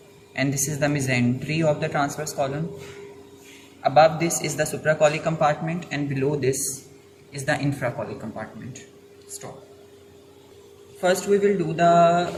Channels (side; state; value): both; identical; correlation 1.00